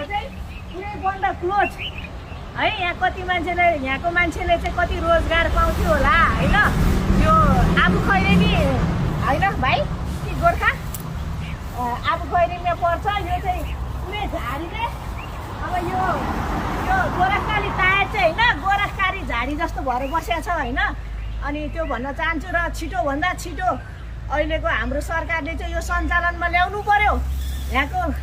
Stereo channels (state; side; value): identical; both; correlation 1.00